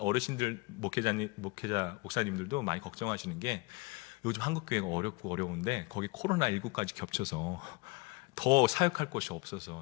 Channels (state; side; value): quieter; right; 26.4 dB